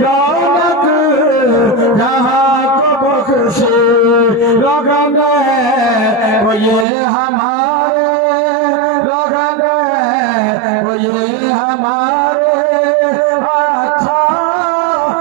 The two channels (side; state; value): left; drops out; at 6.9 s